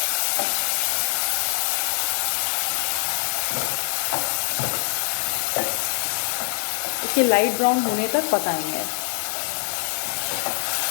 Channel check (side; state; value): right; silent; digital silence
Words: इसे लाइट ब्राउन होने तक पकाएंगे।